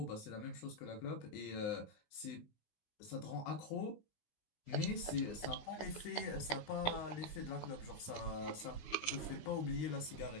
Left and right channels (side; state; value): right; late; 19 ms